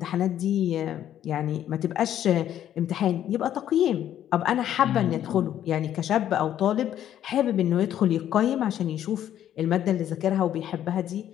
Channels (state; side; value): quieter; right; 11.0 dB